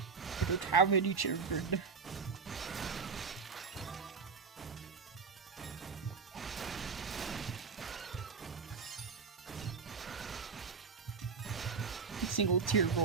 I don't have any children. A single tear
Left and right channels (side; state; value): left; quieter; 5.4 dB